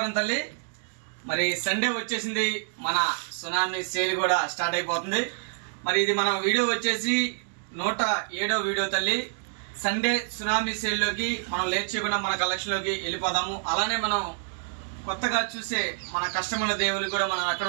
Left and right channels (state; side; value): silent; left; 60 dB below the other